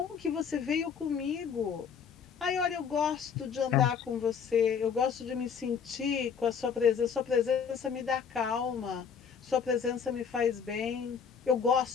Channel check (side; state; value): right; quieter; 6.8 dB